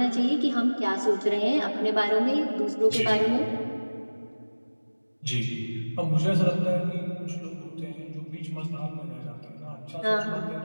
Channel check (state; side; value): inverted; both; correlation -1.00